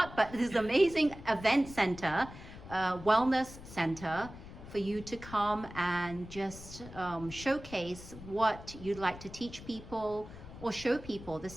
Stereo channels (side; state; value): left; noise; rumble, 15 dB below the sound